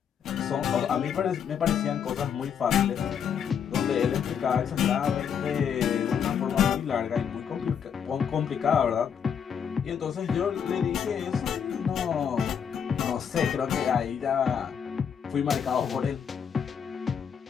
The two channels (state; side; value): quieter; right; 7.7 dB